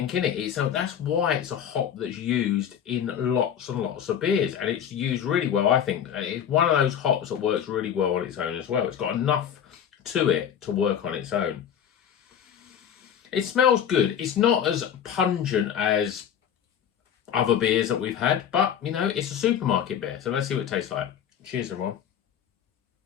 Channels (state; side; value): quieter; right; 8.9 dB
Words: in it. That's why it's a hop that's used in lots and lots of beers, and it's used really well, I think. It's one of those hops that works really well on its own as well. It's got enough to it to work on its own. It smells good. It's not as pungent as other beers that we've had, but you know, it's a supermarket beer. So let's see what it tastes like. Cheers, everyone.